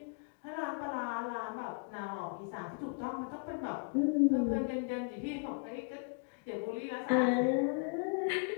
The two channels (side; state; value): right; quieter; 39.1 dB